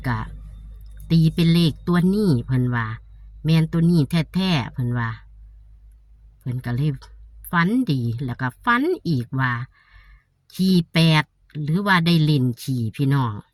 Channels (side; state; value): both; identical; correlation 1.00